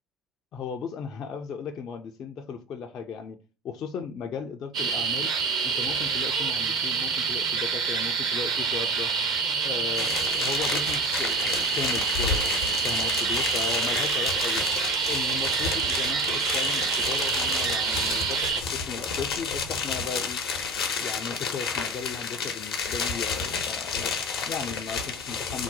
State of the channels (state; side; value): normal; both; correlation 0.30